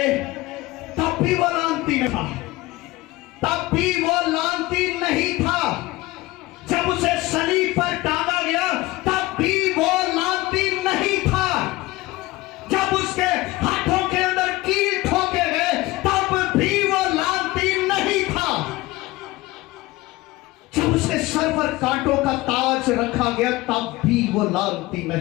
तब भी वो लानती नहीं था, तब भी वो लानती नहीं था। जब उसे सलीब पर टांगा गया तब भी वो लानती नहीं था। जब उसके हाथों के अंदर कील ठोके गए तब भी वो लानती नहीं था। जब उसके सर पर कांटों का ताज रखा गया तब भी वो लानती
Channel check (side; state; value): right; quieter; 19.4 dB